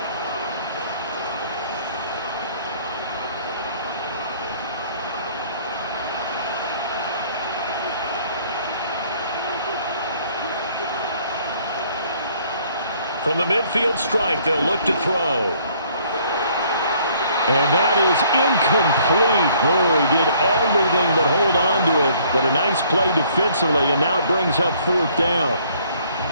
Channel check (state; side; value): inverted; both; correlation -0.61